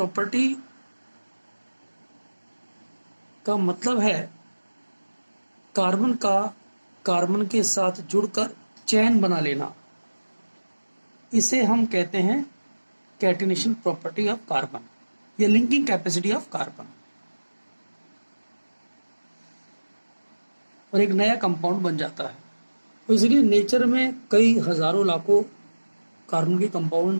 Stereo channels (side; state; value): both; inverted; correlation -1.00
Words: का मतलब है कार्बन का कार्बन के साथ जुड़कर चेन बना लेना. इसे हम कहते हैं कैटिनेशन प्रॉपर्टी ऑफ कार्बन या लिंकिंग कैपेसिटी ऑफ कार्बन. और एक नया कंपाउंड बन जाता है. तो इसलिए नेचर में कई हजारों लाखों कार्बन के कंपाउंड